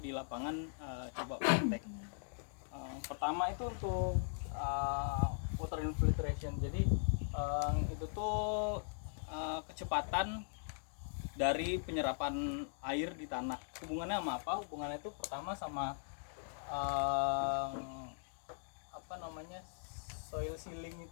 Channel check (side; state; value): right; silent; digital silence